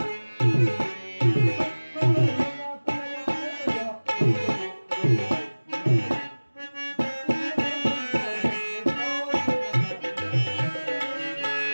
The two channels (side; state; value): both; inverted; correlation -1.00